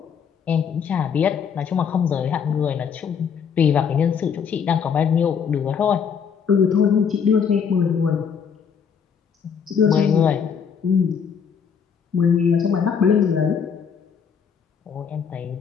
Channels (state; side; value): quieter; right; 6.9 dB